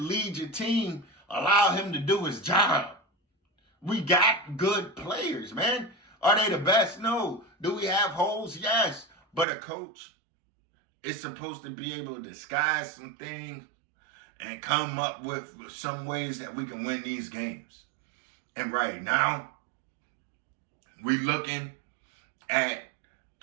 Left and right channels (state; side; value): drops out; left; at 9.5 s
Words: your team, allow him to do his job. We got good players, man. Are they the best? No. Do we have holes? Yes. But a coach is supposed to be able to disguise some things and come up with some ways that we can win these games. And right now, we looking at